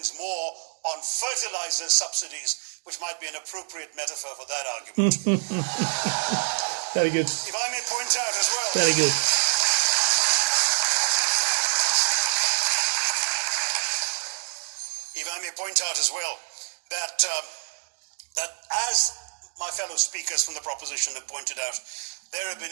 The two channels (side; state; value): left; silent; digital silence